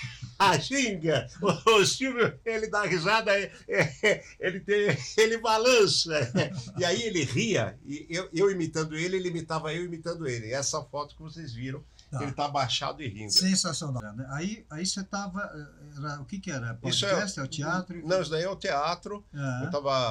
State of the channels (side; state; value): both; identical; correlation 1.00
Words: ginga. O Silvio, ele dá risada, ele balança. E aí ele ria, e eu imitando ele imitava eu imitando ele. Essa foto que vocês viram, ele está abaixado e rindo. Sensacional. Aí você estava... O que era? Podcast? É o teatro? Não, isso daí é o teatro. Eu